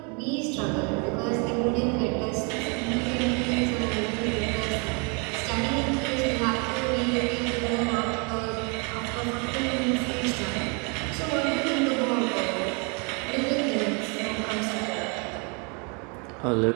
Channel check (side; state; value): left; quieter; 34.2 dB